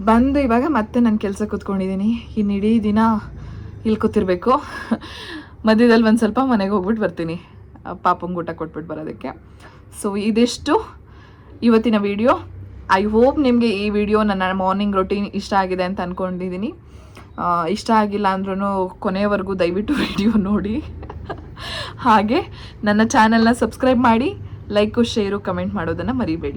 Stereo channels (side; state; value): both; identical; correlation 1.00